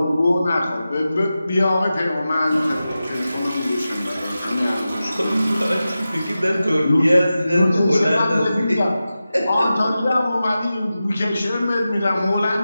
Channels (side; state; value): both; inverted; correlation -0.93